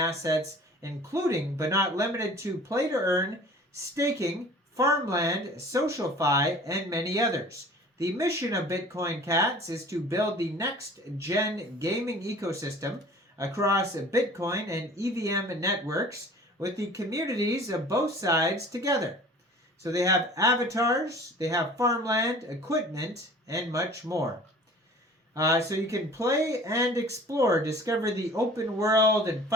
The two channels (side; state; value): both; normal; correlation 0.46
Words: including but not limited to play to earn, staking, farmland, SocialFi, and many others. The mission of Bitcoin CATS is to build the next-gen gaming ecosystem across Bitcoin and EVM networks with the communities of both sides together. So they have avatars, they have farmland, equipment, and much more. So you can play and explore, discover the open world, and